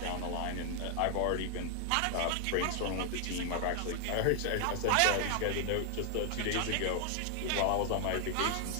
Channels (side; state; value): both; different; correlation 0.00